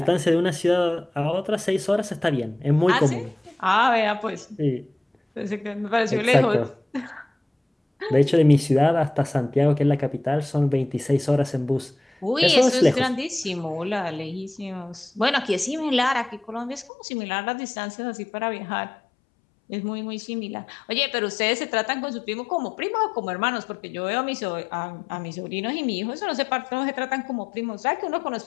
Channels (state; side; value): drops out; right; at 16.9 s